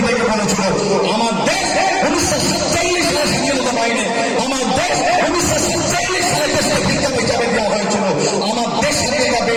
বলেছিল, আমার দেশ ১৯৪৭ সালে স্বাধীনতা পায়নি, আমার দেশ ১৯৪৭ সালে দেশকে ভিক্ষা হিসাবে দেওয়া হয়েছিল, আমার দেশ স্বাধীনতা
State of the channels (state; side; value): identical; both; correlation 1.00